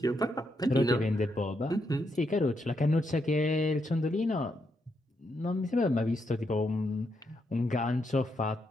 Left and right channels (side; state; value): both; normal; correlation 0.80